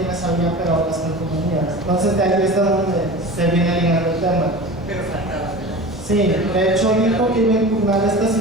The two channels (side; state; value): both; normal; correlation 0.34